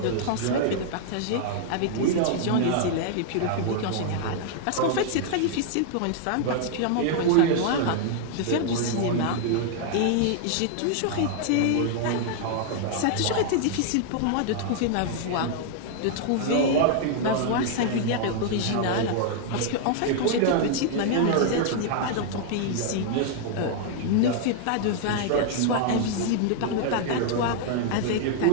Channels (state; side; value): different; both; correlation 0.00